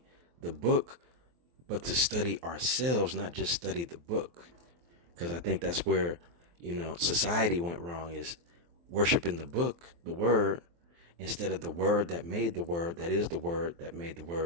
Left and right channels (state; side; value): late; left; 23 ms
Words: the book, but to study ourselves, not just study the book. Because I think that's where, society went wrong, is worshiping the book, the word, instead of the word that made the word, that is the word that made the